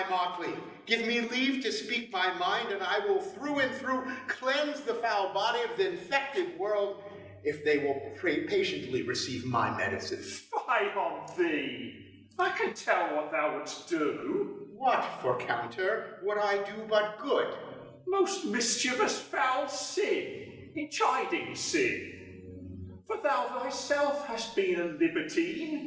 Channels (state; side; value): identical; both; correlation 1.00